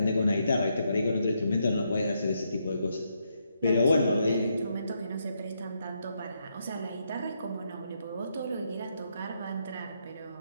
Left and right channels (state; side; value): inverted; both; correlation -0.78